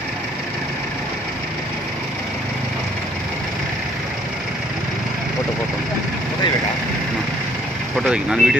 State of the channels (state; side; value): normal; both; correlation 0.62